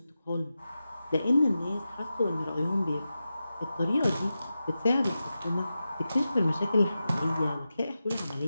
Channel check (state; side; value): inverted; both; correlation -0.92